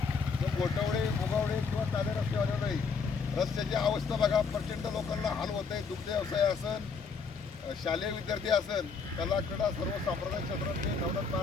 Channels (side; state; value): right; quieter; 5.2 dB